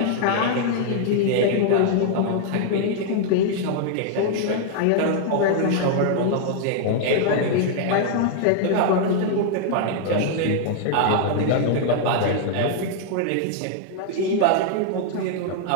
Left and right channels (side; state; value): both; different; correlation -0.01